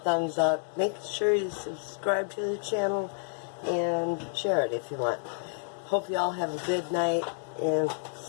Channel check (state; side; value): silent; right; digital silence